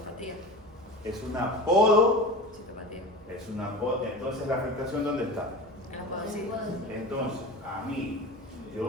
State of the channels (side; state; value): right; noise; hum, 25 dB below the sound